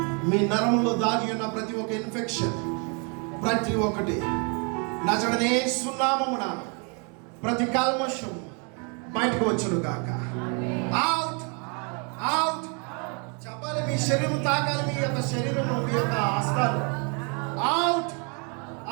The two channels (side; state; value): left; quieter; 36.1 dB